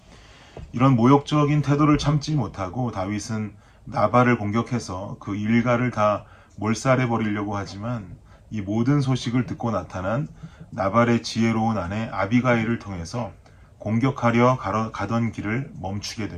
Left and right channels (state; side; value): identical; both; correlation 1.00